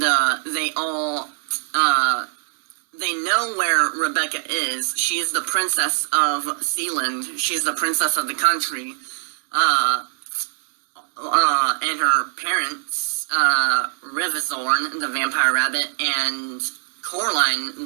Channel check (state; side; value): silent; left; digital silence